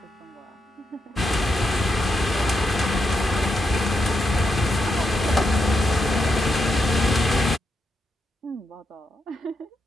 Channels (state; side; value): normal; both; correlation 0.83